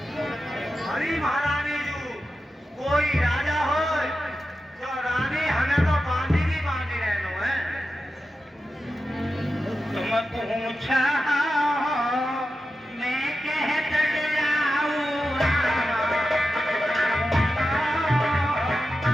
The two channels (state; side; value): normal; both; correlation 0.91